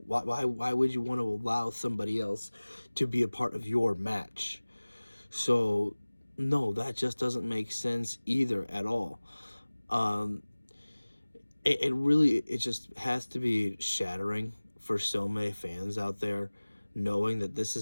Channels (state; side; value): inverted; both; correlation -1.00